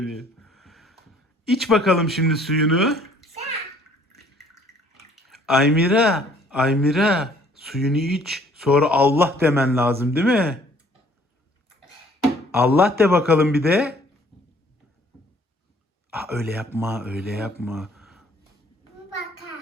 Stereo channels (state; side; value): normal; both; correlation 0.58